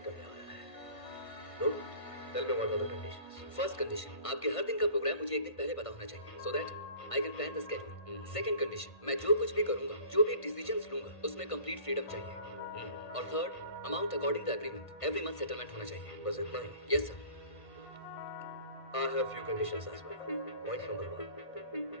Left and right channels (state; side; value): late; right; 1.5 ms